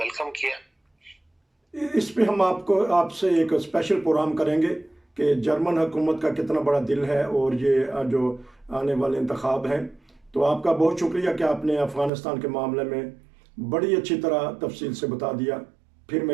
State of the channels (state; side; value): drops out; left; at 12.1 s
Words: کیا. اس پہ ہم آپ سے ایک اسپیشل پروگرام کریں گے کہ جرمن حکومت کا کتنا بڑا دل ہے اور یہ جو آنے والے انتخاب ہیں. تو آپ کا بہت شکریہ کہ آپ نے افغانستان کے معاملے میں بڑی اچھی طرح تفصیل سے بتا دیا. پھر